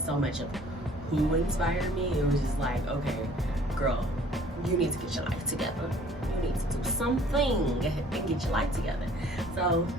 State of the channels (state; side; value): normal; both; correlation 0.54